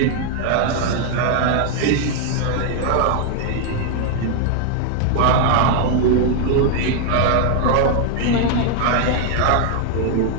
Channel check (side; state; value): both; different; correlation 0.00